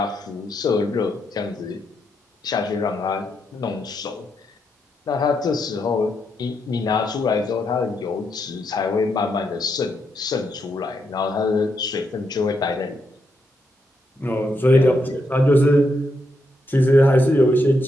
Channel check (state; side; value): normal; both; correlation 0.80